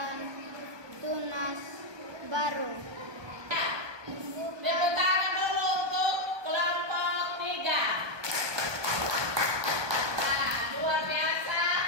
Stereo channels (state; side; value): late; left; 1.2 ms